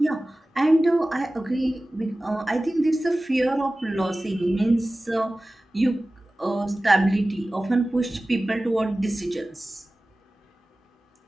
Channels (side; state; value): both; normal; correlation 0.97